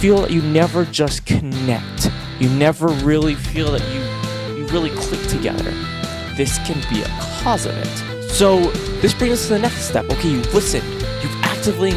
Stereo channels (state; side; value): identical; both; correlation 1.00